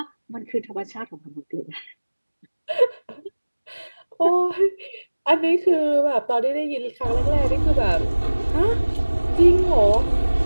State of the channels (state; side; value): inverted; both; correlation -1.00